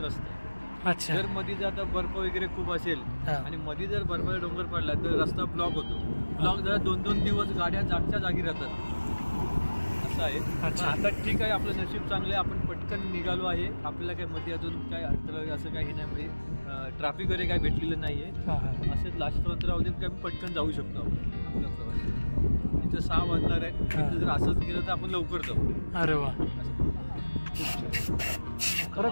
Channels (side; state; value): both; inverted; correlation -1.00